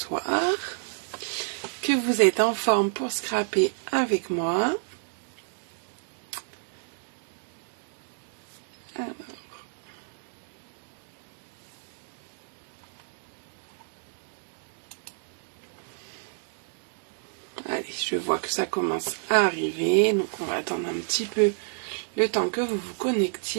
Que vous êtes en forme pour scraper avec moi. Alors. Allez, je vois que ça commence à arriver, donc on va attendre un petit peu le temps que vous vous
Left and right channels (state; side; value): silent; left; digital silence